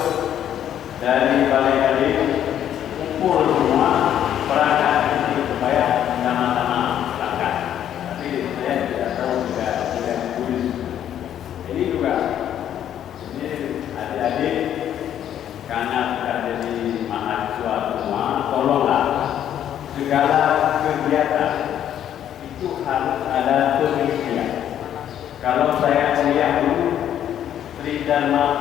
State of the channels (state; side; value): quieter; right; 10.4 dB